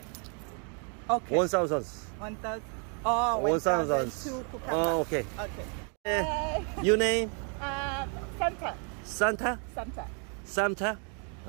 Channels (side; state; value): left; quieter; 39.1 dB